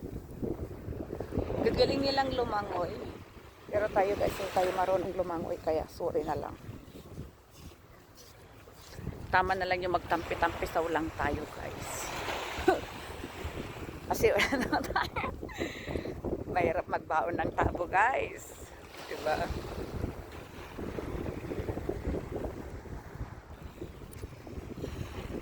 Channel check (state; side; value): identical; both; correlation 1.00